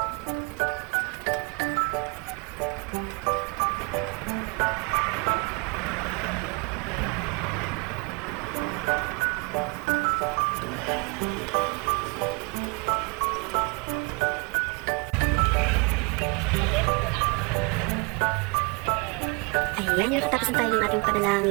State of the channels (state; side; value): quieter; left; 30.4 dB